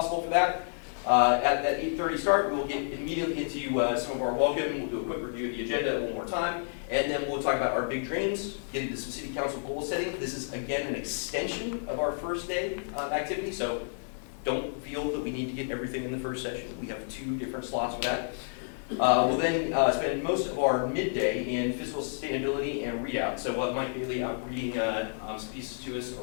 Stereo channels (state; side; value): silent; right; digital silence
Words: for that. At that 8:30 start, we will get immediately into some of our welcome. We'll do a quick review of the agenda one more time, and then we'll talk about our big dreams, get into some city council goal setting. This is, again, an extension of our first day activity, so don't feel that we need to get everything in the first session. We have 2 different slots for that. We'll then spend most of our midday in fiscal sustainability and readout. So we'll have Mike Bailey out reading some pieces to us